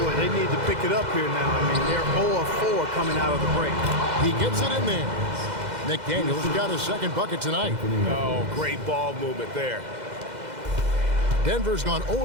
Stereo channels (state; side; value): late; left; 2.0 ms